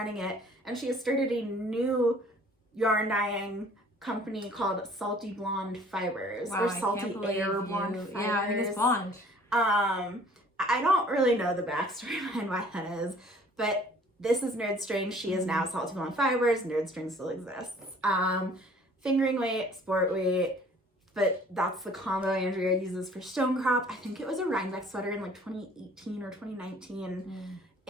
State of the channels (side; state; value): both; normal; correlation 0.54